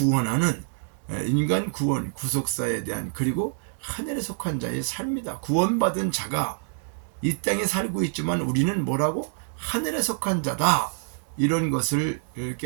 인간 구원 구속사에 대한, 그리고 하늘에 속한 자의 삶이다. 구원받은 자가 이 땅에 살고 있지만 우리는 뭐라고? 하늘에 속한 자다. 이런 것을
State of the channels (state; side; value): silent; left; 61 dB below the other